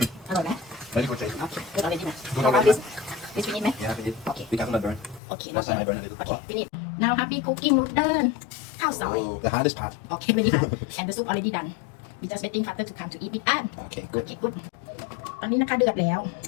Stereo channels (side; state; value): right; drops out; at 5.2 s